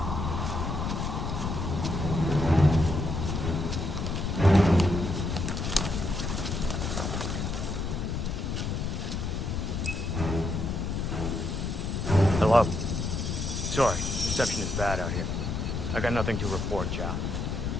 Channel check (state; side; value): noise; left; rumble, 2 dB below the sound